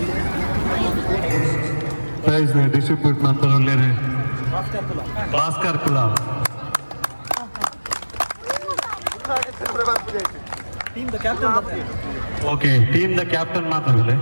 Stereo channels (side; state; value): both; inverted; correlation -1.00